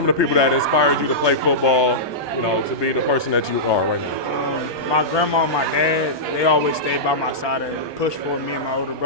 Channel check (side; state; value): right; late; 1.2 ms